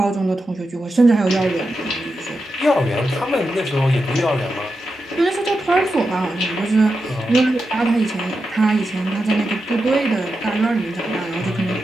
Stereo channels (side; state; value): both; normal; correlation 0.88